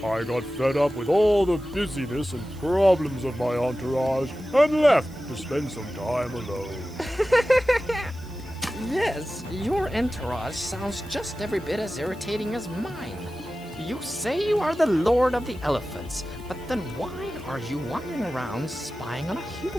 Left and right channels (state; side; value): noise; right; hiss, 25 dB below the sound